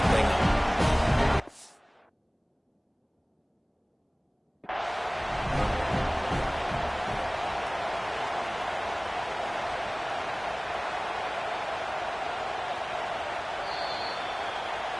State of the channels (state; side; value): identical; both; correlation 1.00